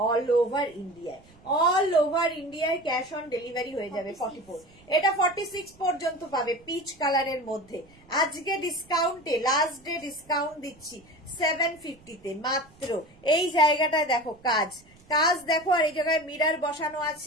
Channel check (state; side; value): noise; right; rumble, 27 dB below the sound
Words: all over ইন্ডিয়ায়, অল ওভার ইন্ডিয়ায় ক্যাশ অন ডেলিভারি হয়ে যাবে। 44 এটা 46 পর্যন্ত পাবে পিচ কালারের মধ্যে। আজকে ডিসকাউন্টে লাস্ট ডে ডিসকাউন্ট দিচ্ছি 750 তে মাত্র। এই জায়গাটায় দেখো কাজ, কাজ দেখো, আর এই জায়গায় মিরর বসানো